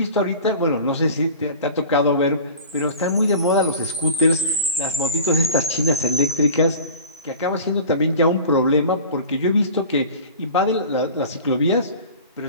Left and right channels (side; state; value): both; inverted; correlation -0.39